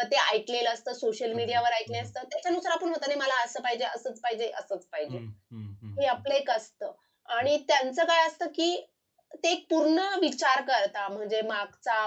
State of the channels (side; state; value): both; identical; correlation 1.00